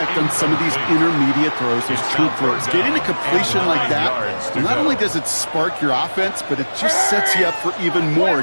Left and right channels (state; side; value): inverted; both; correlation -1.00